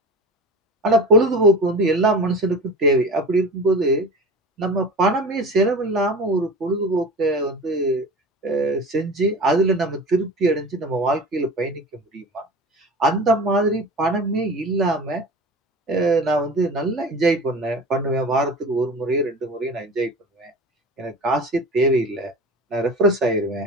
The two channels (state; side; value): normal; both; correlation 0.34